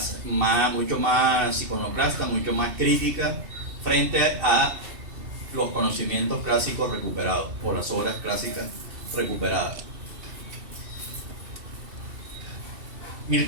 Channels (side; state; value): left; late; 2.6 ms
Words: mucho más iconoclasta, mucho más crítica frente a los conocimientos clásicos recuperados, o las obras clásicas recuperadas.